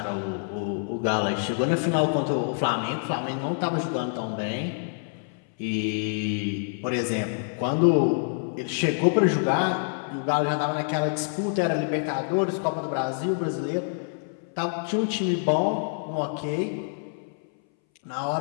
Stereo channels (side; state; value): right; silent; 60 dB below the other